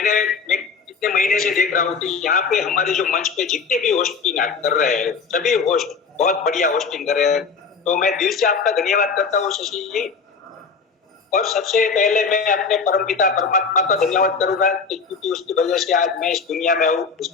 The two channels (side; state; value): right; quieter; 5.2 dB